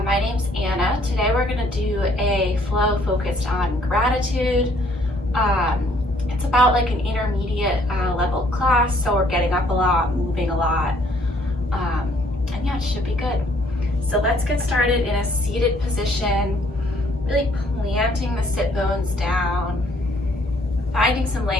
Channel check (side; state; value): both; normal; correlation 0.64